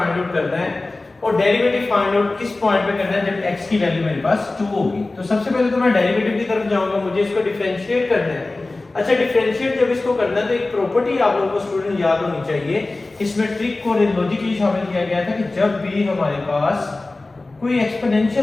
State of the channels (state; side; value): quieter; right; 3.2 dB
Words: आउट करना है और डेरिवेटिव फाइंड आउट किस पॉइंट पे करना है जब x की वैल्यू मेरे पास 2 होगी। तो सबसे पहले तो मैं डेरिवेटिव की तरफ जाऊंगा, मुझे इसको डिफरेंशिएट करना है। अच्छा, डिफरेंशिएट जब इसको करना है तो एक प्रॉपर्टी आप लोगों को स्टूडेंट याद होनी चाहिए। इसमें ट्रिक को लॉजिकली शामिल किया गया था कि जब भी हमारे पास कोई